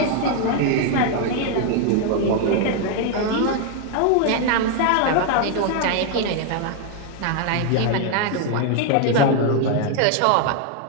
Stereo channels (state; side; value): different; both; correlation 0.01